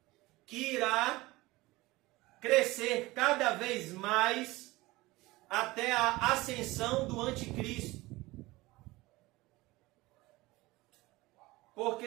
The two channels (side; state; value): left; quieter; 20.3 dB